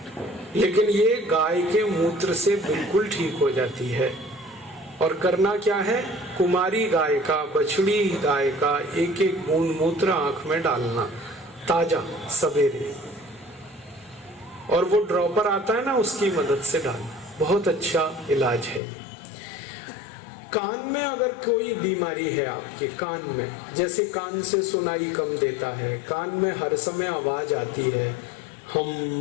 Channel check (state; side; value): drops out; right; at 18.8 s